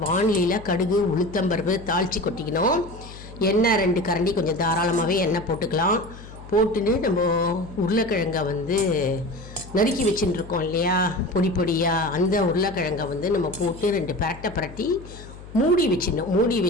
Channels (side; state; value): left; noise; hum, 16 dB below the sound